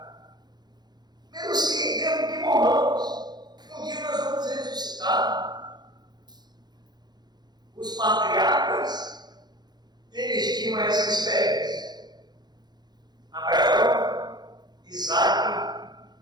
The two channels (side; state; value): left; late; 0.20 ms